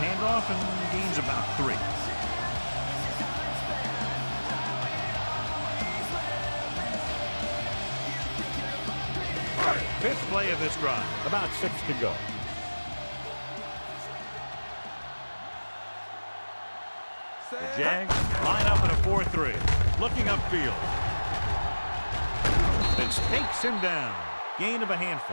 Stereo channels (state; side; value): inverted; both; correlation -1.00